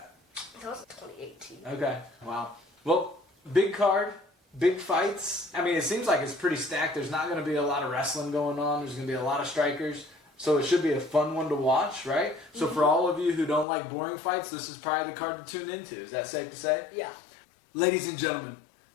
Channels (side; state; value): right; drops out; at 13.7 s